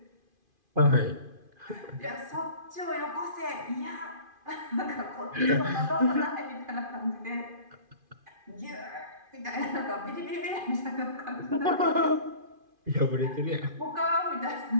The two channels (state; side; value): late; left; 2.5 ms